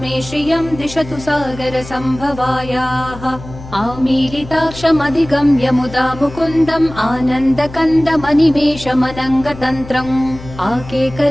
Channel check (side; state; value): left; noise; hum, 14 dB below the sound